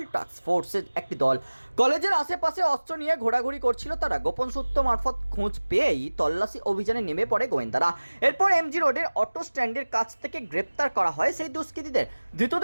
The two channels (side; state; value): both; inverted; correlation -1.00